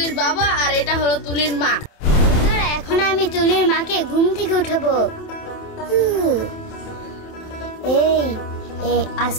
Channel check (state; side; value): late; right; 28 ms